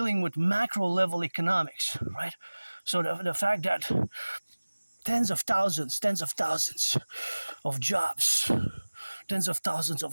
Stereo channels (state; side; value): inverted; both; correlation -1.00